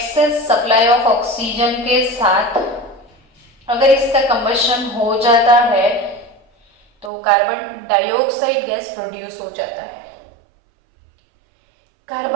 सप्लाई ऑफ ऑक्सीजन के साथ अगर इसका कंबशन हो जाता है तो कार्बन डाइऑक्साइड गैस प्रोड्यूस हो जाता है।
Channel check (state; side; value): drops out; left; at 7.1 s